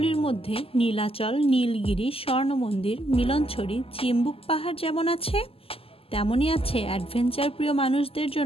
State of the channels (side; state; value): right; late; 0.28 ms